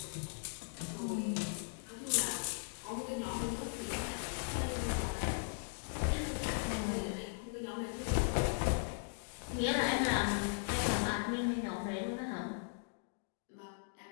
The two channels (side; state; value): right; silent; digital silence